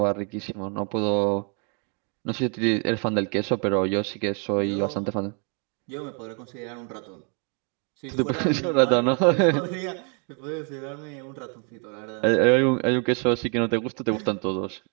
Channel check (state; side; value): quieter; left; 38.5 dB